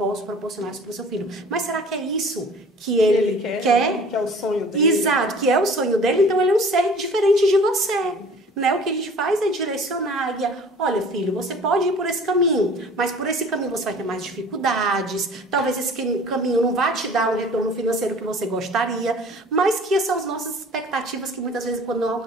proporcionar isso para o seu filho. Mas será que é isso que ele quer? Que é o sonho dele. Exato, que é o sonho dele, então ele é um ser diferente de você. Né? O que a gente faz é direcionar, guiar. Olha, filho, você pode ir por esse caminho, mas por esse caminho você vai ter mais dificuldades, talvez esse caminho não vá te dar um retorno financeiro que você gostaria, mas que são as nossas expectativas que muitas vezes, quando não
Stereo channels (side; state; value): both; normal; correlation 0.47